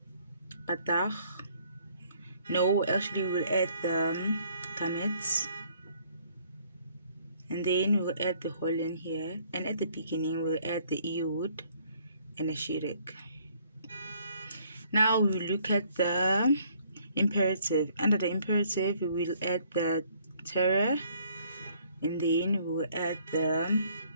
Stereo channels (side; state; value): both; inverted; correlation -0.63